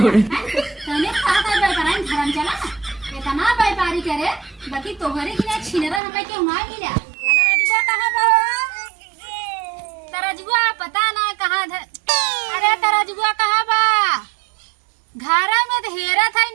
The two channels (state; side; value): drops out; left; at 6.0 s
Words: तने कहा था व्यापारी धर्म चला इतना व्यापारी करे बाकी तोहरे की ना छिनरा हमें क्यों ना मिला तरजुआ कहां बा तरजुआ पता ना कहां अरे तरजुआ कहां बा घर में तो हेरा था